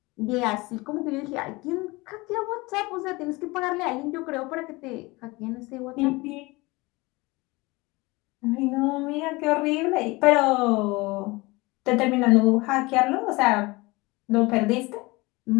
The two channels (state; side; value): quieter; right; 23.2 dB